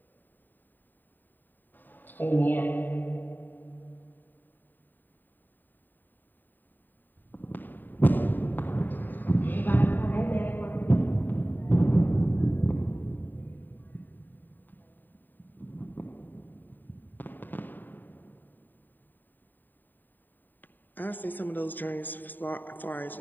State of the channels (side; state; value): right; late; 0.090 ms